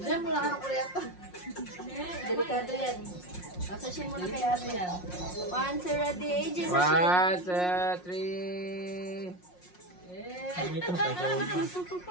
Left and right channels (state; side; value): late; right; 5.6 ms